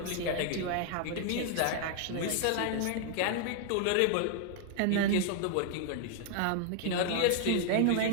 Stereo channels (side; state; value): both; different; correlation 0.00